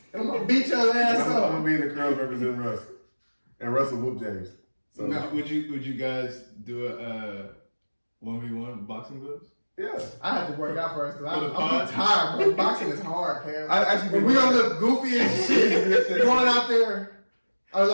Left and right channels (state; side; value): inverted; both; correlation -1.00